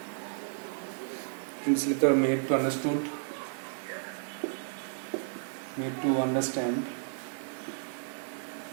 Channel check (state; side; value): silent; left; 56 dB below the other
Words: লিখতে made to understood, made to understand.